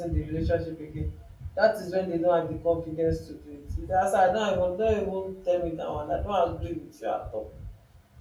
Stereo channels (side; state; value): both; identical; correlation 1.00